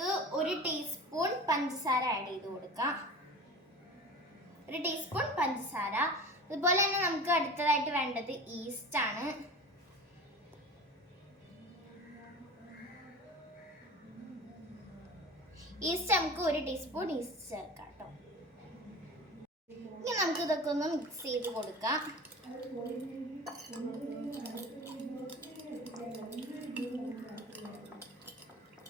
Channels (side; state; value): both; normal; correlation 0.35